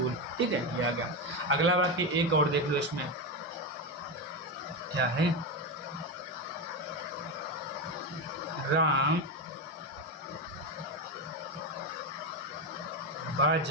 ठीक है, ये आ गया। अगला वाक्य एक और देख लो, इसमें क्या है? राम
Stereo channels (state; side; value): normal; both; correlation 0.12